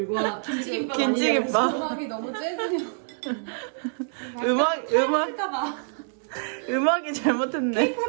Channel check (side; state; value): left; silent; 61 dB below the other